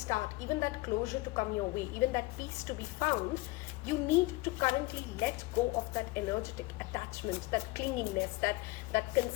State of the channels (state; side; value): quieter; right; 21.2 dB